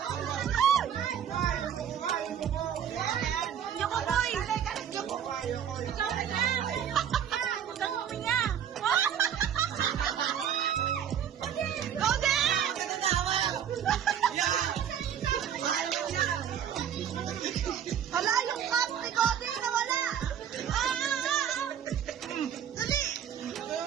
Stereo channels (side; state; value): left; quieter; 9.0 dB